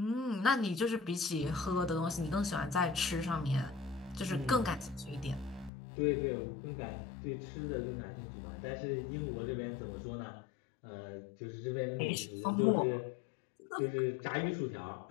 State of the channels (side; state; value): right; drops out; at 5.7 s